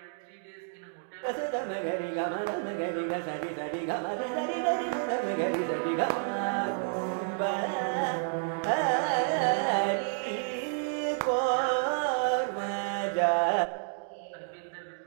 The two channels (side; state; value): left; silent; digital silence